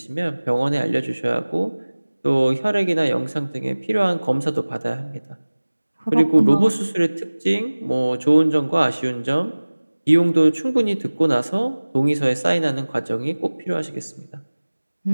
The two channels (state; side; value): inverted; both; correlation -1.00